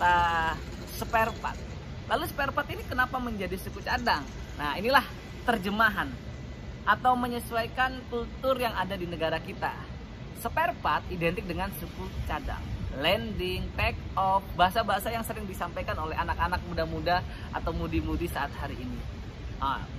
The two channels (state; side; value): identical; both; correlation 1.00